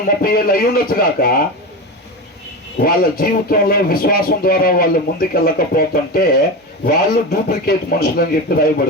30 ఏళ్ళు అయి ఉండొచ్చు గాక, వాళ్ళ జీవితంలో విశ్వాసం ద్వారా వాళ్ళు ముందుకెళ్ళకపోతుంటే వాళ్ళు డూప్లికేట్ మనుషులు అని చెప్పి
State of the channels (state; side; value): normal; both; correlation 0.22